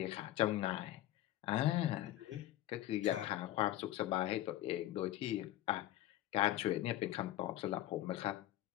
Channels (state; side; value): quieter; right; 14.4 dB